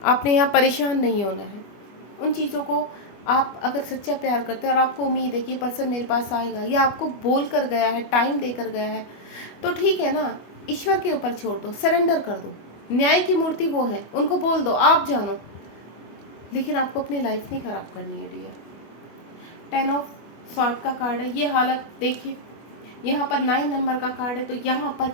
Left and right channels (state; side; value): late; right; 24 ms